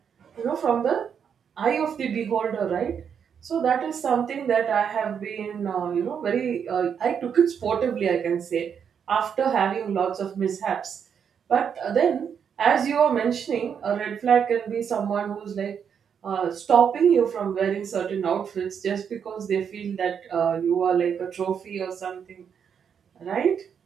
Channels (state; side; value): quieter; left; 7.5 dB